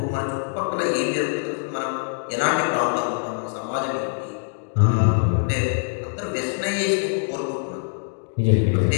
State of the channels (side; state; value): right; silent; digital silence